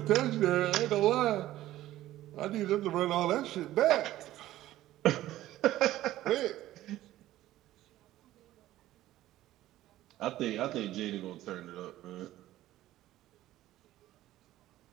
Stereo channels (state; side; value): quieter; left; 14.7 dB